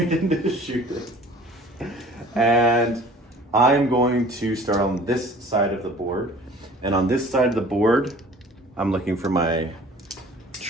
into shooting. And I'm going to start on this side of the board. And on this side of the board, I'm looking for my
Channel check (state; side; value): normal; both; correlation 0.48